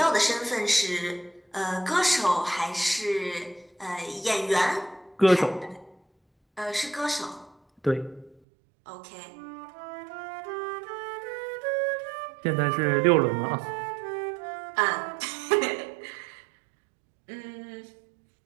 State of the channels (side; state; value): left; drops out; at 8.3 s